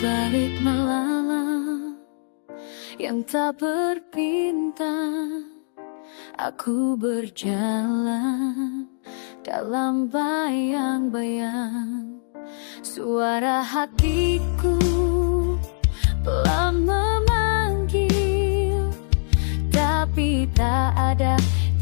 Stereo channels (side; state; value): right; silent; digital silence